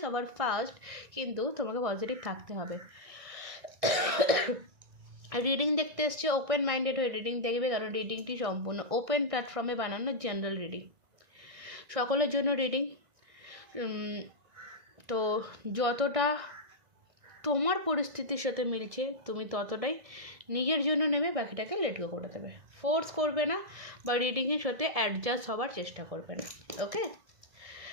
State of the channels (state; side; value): late; left; 1.6 ms